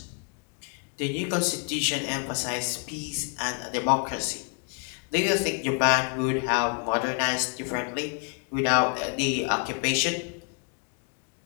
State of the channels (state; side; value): quieter; right; 39.9 dB